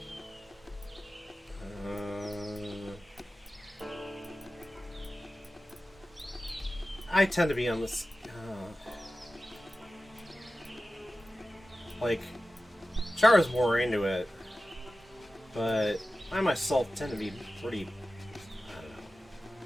I tend to be on this... like, Chara's more into it, but I myself tend to be pretty... I don't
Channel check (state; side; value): normal; both; correlation 0.95